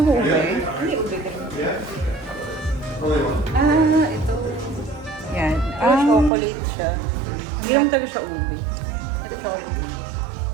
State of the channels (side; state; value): left; drops out; at 6.3 s